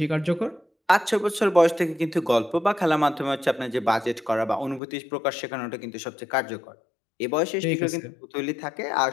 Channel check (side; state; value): right; drops out; at 4.8 s